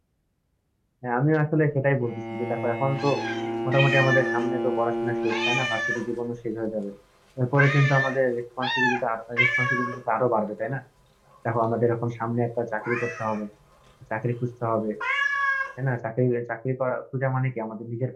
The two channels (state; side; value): identical; both; correlation 1.00